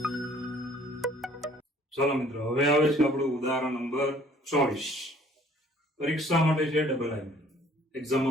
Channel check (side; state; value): both; normal; correlation 0.57